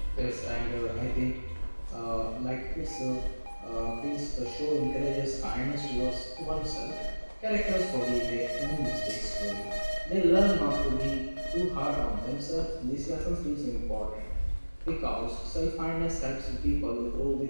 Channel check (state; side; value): inverted; both; correlation -1.00